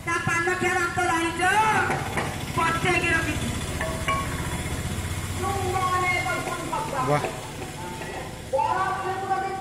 ता पान खेरा तो राई जो पट्टे के रखी तू मने कोन पक्का वाह बड़ा खेत में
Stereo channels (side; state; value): both; identical; correlation 1.00